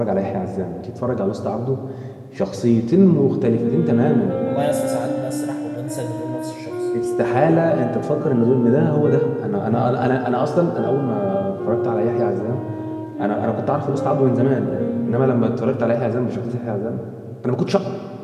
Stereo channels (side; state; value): both; identical; correlation 1.00